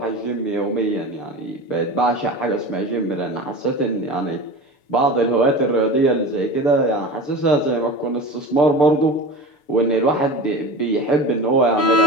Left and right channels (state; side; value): late; right; 6.8 ms